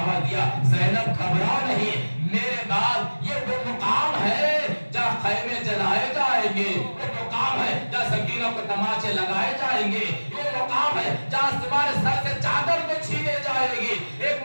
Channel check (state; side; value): inverted; both; correlation -1.00